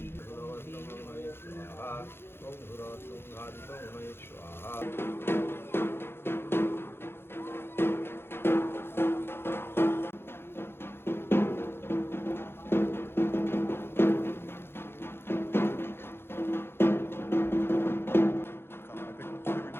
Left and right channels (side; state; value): right; late; 0.11 ms